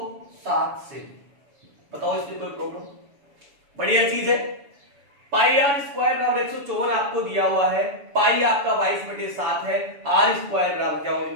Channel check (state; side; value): late; left; 7.0 ms